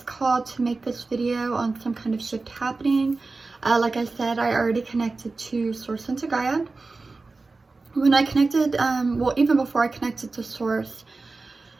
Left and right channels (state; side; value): quieter; left; 3.7 dB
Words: called to make this video on some kind of shift happening. Like I said, I already connected to Source and to Gaia. When I connected, well, even before I connected to Source,